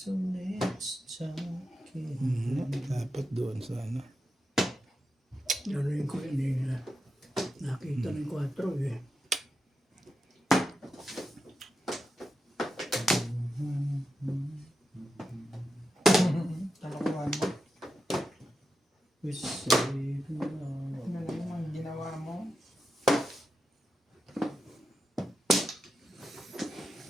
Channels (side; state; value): both; normal; correlation 0.88